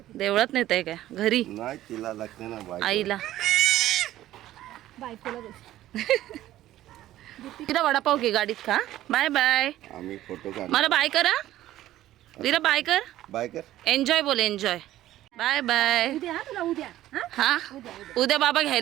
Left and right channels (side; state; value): left; quieter; 14.1 dB